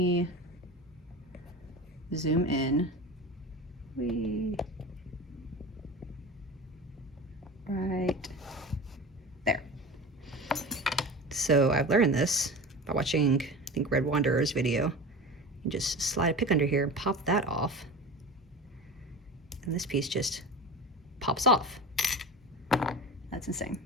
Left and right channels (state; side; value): normal; both; correlation 0.32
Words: zoom in. Right there. So I've learned this by watching, I think, Red Wanderer's video. You just slide a pick under here and pop that off. And this piece just pops off. That's insane.